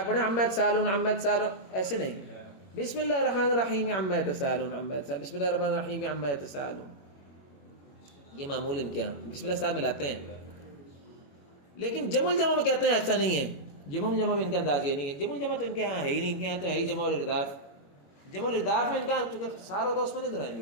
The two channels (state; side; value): late; right; 21 ms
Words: پڑھیں عما یتساءلون عما یتساءلون، ایسے نہیں. بسم اللہ الرحمن الرحیم عما یتساءلون عما یتساءلون، بسم اللہ الرحمن الرحیم عما یتساءلون. یہ معمول ان کے یہاں بسم اللہ ساتھ ملاتے ہیں. لیکن جمع الجمع میں کہتے ہیں ایسا نہیں ہے. جمع الجمع میں ان کا انداز یہ نہیں ہے. جمع الجمع تو ان کے یہاں ہے ہی نہیں. ان کے یہاں تو ہے ہی جمع الارداف. جمع الارداف میں ان کا چونکہ اختصار ہوگا اس میں نہیں دہرائیں